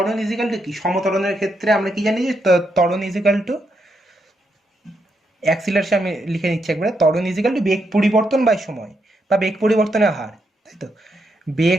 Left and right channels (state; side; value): normal; both; correlation 0.80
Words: ইজিক্যাল টু কি, সমতরণের ক্ষেত্রে আমরা কি জানি, যে ত্বরণ ইজিক্যাল টু অ্যাক্সিলারেশন, আমি লিখে নিচ্ছি একবারে, ত্বরণ ইজিক্যাল টু বেগ পরিবর্তন বাই সময়, বা বেগ পরিবর্তনের হার, তাই তো,